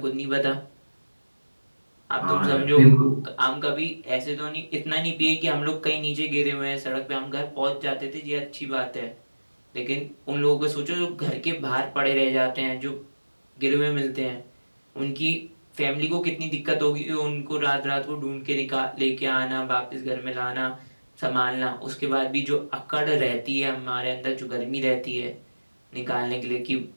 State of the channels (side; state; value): both; inverted; correlation -1.00